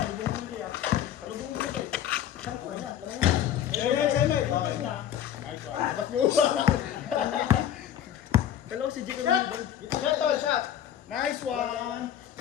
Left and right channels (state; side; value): quieter; right; 10.4 dB